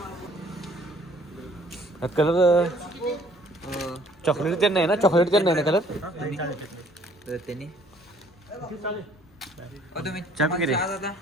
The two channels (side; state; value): both; normal; correlation 0.59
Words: कलर चॉकलेट ते नाही ना, चॉकलेट ते नाही ना कलर. चहा पिके रे.